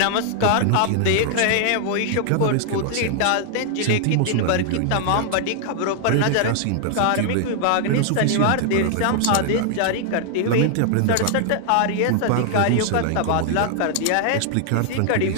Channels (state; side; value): different; both; correlation 0.00